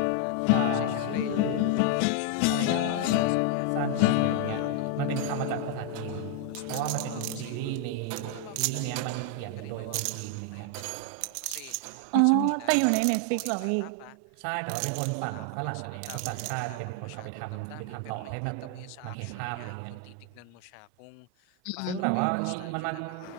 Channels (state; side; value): different; both; correlation 0.00